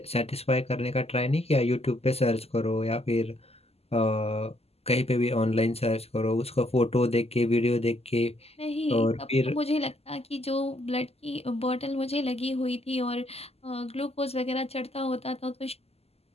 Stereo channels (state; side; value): late; right; 0.29 ms